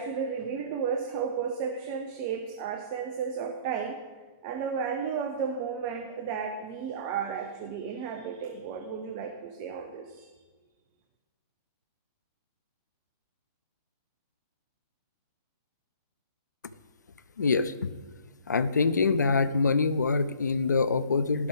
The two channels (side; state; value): both; inverted; correlation -0.54